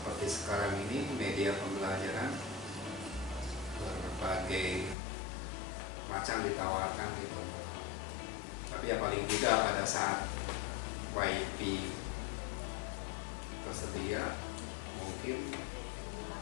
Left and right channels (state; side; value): drops out; right; at 5.0 s